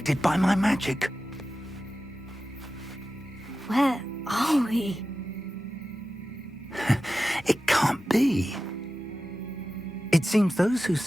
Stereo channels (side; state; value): both; normal; correlation 0.94